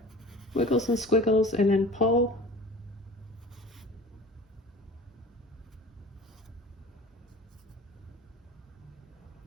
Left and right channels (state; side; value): normal; both; correlation 0.41